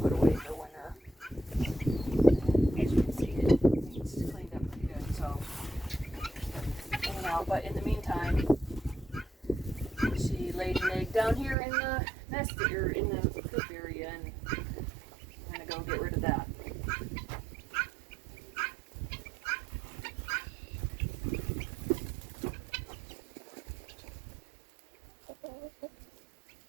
put away for winter. And as you can see, it's cleaned up pretty good. So, anyhow, but in the meantime, she laid an egg down here in the nest or in the coop area, and I'm gonna go get rid of that.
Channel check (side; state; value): left; drops out; at 11.6 s